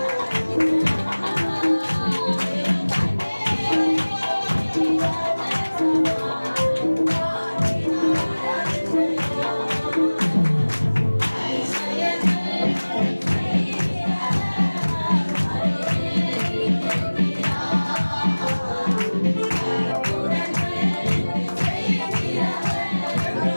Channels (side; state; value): both; inverted; correlation -1.00